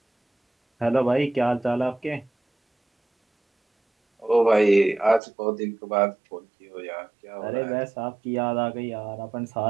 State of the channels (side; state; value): left; drops out; at 5.2 s